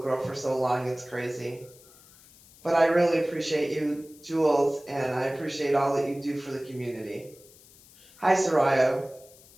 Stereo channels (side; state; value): left; noise; hiss, 25 dB below the sound